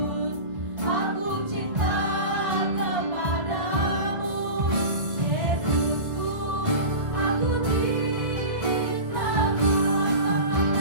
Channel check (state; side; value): late; left; 1.5 ms